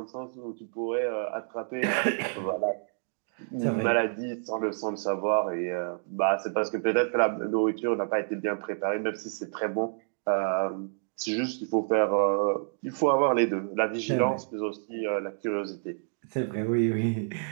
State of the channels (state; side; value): silent; left; digital silence